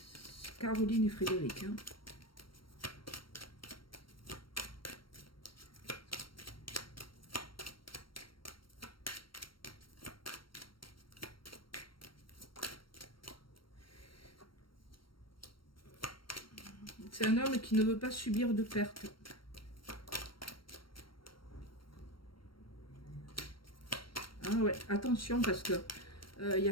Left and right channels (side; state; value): right; late; 0.73 ms